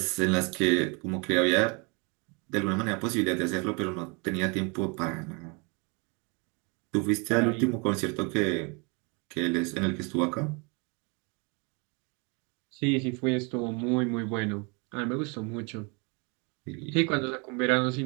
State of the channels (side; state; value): left; quieter; 31.7 dB